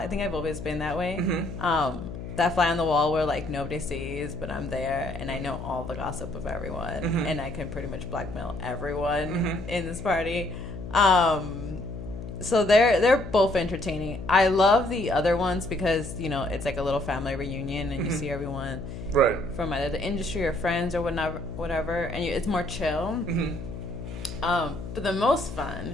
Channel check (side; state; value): left; noise; hum, 9 dB below the sound